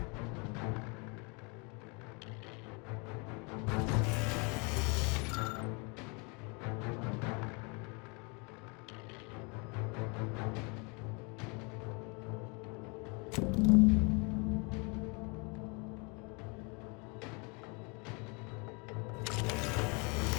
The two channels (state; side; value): quieter; right; 31.9 dB